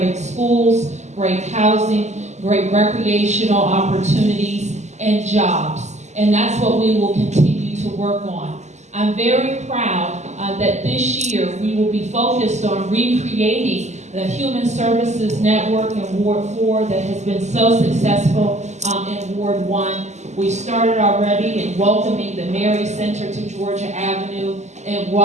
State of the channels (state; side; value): late; left; 0.33 ms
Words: schools, great housing, great recreational opportunities, and jobs. And that's what we will continue to work on. I'm very proud that this year we will be focused on recreating the Human Services Network in Ward 4 that has been so successful in Ward 1. We started already in welcoming the Mary Center to Georgia Avenue and